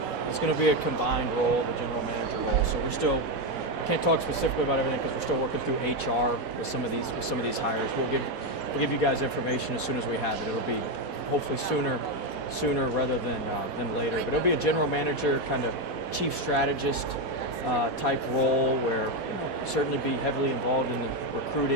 a combined role, the general manager role. So we're still can't talk specifically about everything because we're still working through HR with some of these hires. We'll give you guys information as soon as we have it. It'll be hopefully sooner rather than later. But it'll be a general manager, kind of chief strategist type role where certainly be heavily involved in the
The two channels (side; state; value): right; late; 1.3 ms